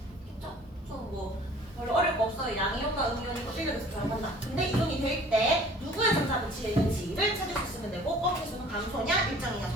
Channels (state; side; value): normal; both; correlation 0.50